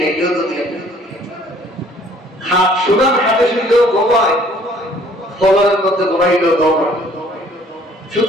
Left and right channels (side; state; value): both; normal; correlation 0.58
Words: খাইলেও দুনিয়া যায়, সোনার হাতে শুনলেও ঘুমায়, ফলনের মধ্যে ঘুমাইলেও ঘুমায়।